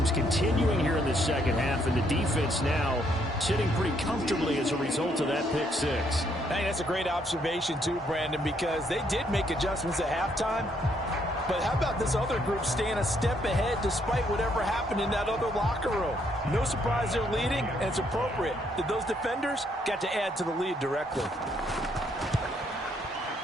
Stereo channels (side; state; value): both; normal; correlation 0.71